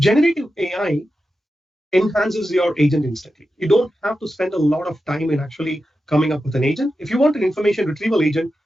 AI enhances your agent instantly. You don't have to spend a lot of time in actually coming up with an agent. If you want an information retrieval agent,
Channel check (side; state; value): both; normal; correlation 0.91